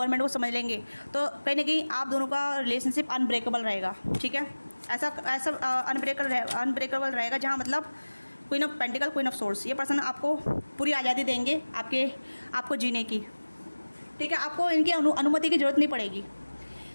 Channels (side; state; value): both; inverted; correlation -1.00